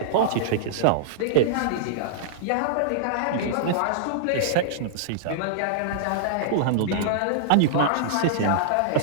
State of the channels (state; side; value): different; both; correlation -0.02